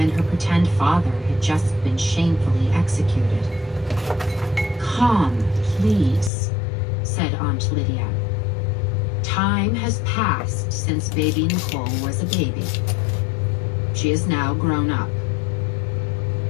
her pretend father had just been shamefully executed. Calm, please, said Aunt Lydia. Time has passed since baby Nicole was a baby. She is now grown up.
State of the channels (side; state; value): right; drops out; at 6.3 s